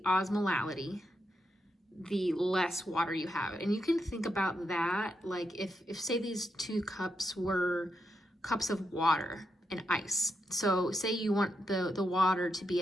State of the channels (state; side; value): normal; both; correlation 0.83